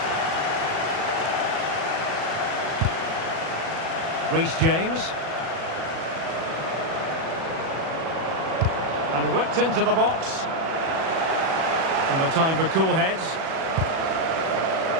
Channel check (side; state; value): left; late; 37 ms